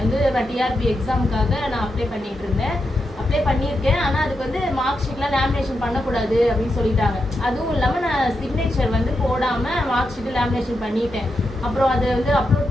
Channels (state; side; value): normal; both; correlation 0.86